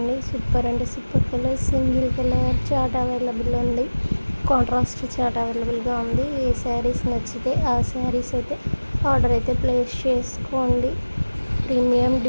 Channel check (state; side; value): inverted; both; correlation -1.00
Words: సూపర్ అంటే super colour, single colour chart available ఉంది, కాంట్రాస్ట్ చార్ట్ అవైలబుల్గా ఉంది. ఏ శారీస్ నచ్చితే ఆ శారీస్ అయితే ఆర్డర్ అయితే ప్లేస్ చేసుకోండి. ప్రీమియం